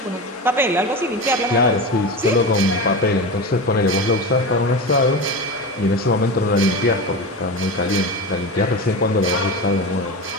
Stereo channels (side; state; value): both; normal; correlation 0.25